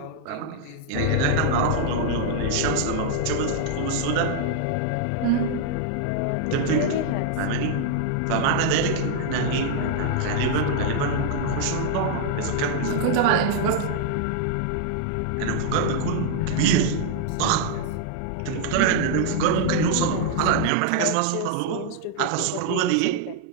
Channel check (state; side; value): different; both; correlation -0.01